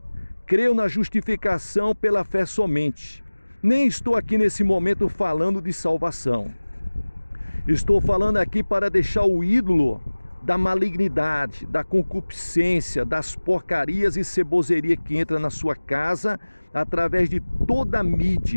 Creio na justificação pela fé somente. Nem estou aqui nesse momento falando de salvação. Estou falando aqui para deixar o ídolo da malignidade, da concupiscência, das porcarias e ceboseria que entra na sua casa através de toda a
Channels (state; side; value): inverted; both; correlation -1.00